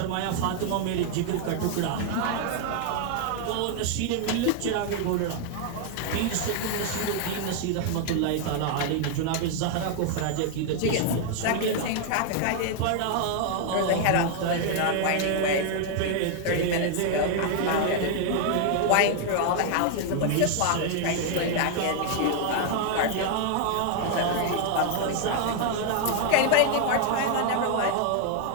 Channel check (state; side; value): different; both; correlation 0.00